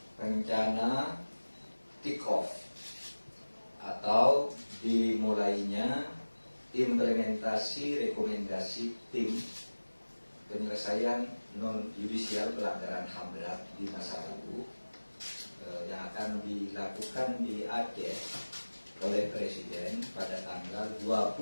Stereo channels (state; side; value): inverted; both; correlation -1.00